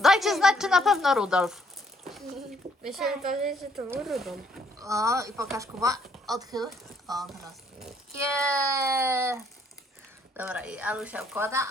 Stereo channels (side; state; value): both; normal; correlation 0.67